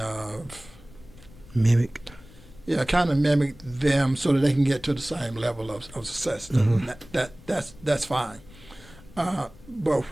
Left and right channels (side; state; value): left; noise; rumble, 21 dB below the sound